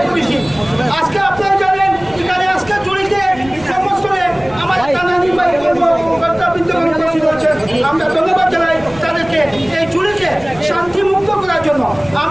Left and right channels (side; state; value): left; noise; rumble, 20 dB below the sound